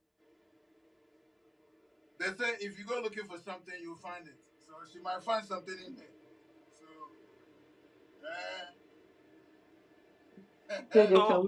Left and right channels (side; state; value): both; identical; correlation 1.00